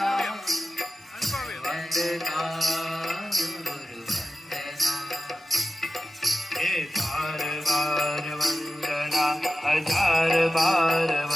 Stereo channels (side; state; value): both; normal; correlation 0.94